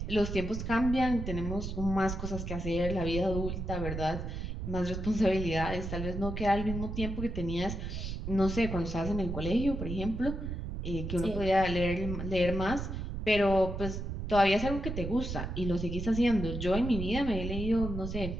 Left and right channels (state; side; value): noise; right; rumble, 5 dB below the sound